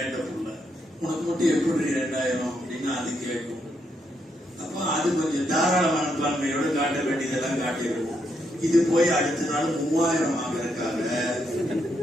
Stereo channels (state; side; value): normal; both; correlation 0.78